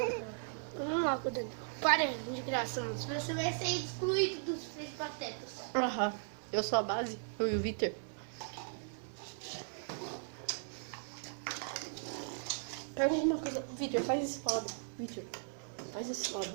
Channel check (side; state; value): left; silent; digital silence